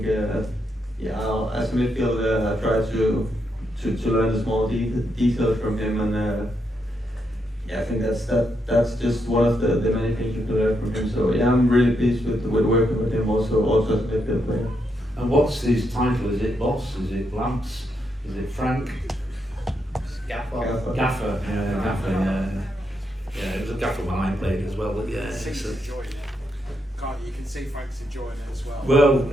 as a midfielder, I try to learn the small details from him, and I think that's just one of the many things you can learn from him. So I'm really pleased with working with him also as a midfield player. And what's his title? Is it boss? Is it Lamps? Is it Frank? Gaffer. Gaffer. Yeah, it was a gaffer when I played as well. But He's enjoying it. You can see Frank's enjoying it as well. Well,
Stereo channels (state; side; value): normal; both; correlation 0.80